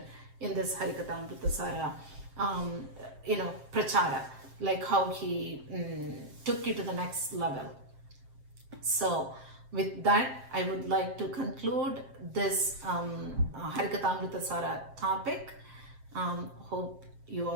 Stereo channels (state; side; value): late; left; 7.5 ms